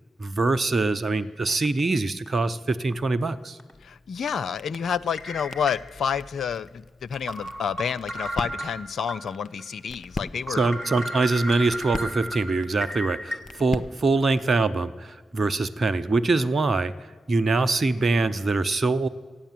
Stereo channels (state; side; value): normal; both; correlation 0.85